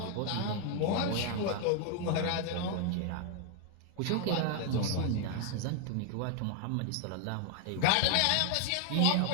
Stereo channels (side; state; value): both; different; correlation 0.00